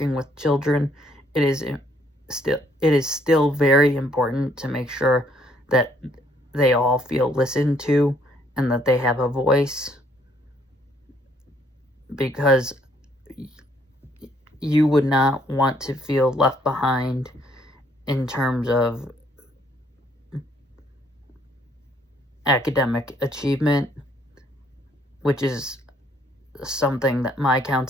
with children, it is still very important to make sure that they all feel listened to and that they have a voice, because you would not want to feel left behind in terms of academic achievement, which is something that my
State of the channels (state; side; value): normal; both; correlation 0.66